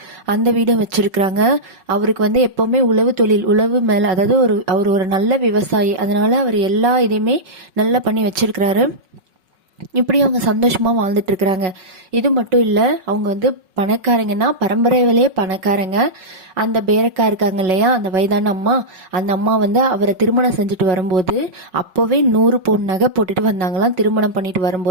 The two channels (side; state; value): left; late; 5.4 ms